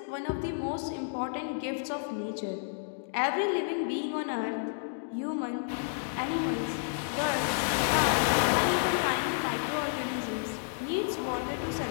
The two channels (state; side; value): silent; right; digital silence